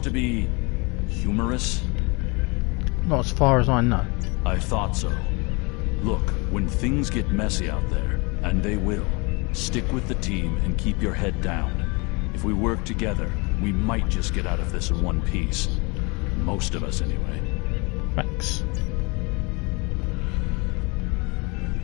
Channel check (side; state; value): right; quieter; 28.5 dB